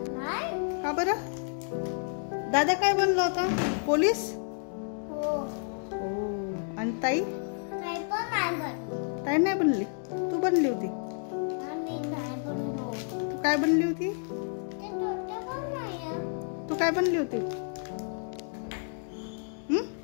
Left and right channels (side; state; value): right; silent; 58 dB below the other